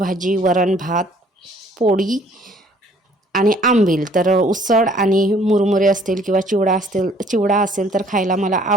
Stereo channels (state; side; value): normal; both; correlation 0.59